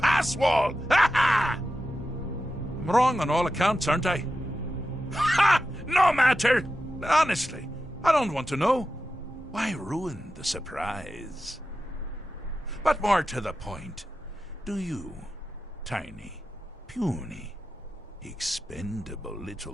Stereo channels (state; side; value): normal; both; correlation 0.91